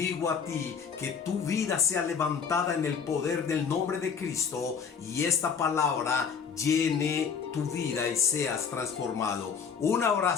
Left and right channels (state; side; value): quieter; right; 6.5 dB